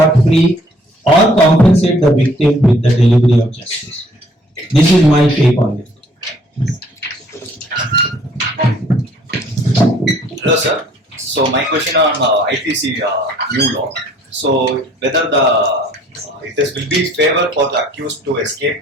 free or compensate the victim with the delivery of justice. This is my take on it. Hello, sir. So my question on IPC new law. So whether it will be favor for the accused to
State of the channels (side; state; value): both; normal; correlation 0.60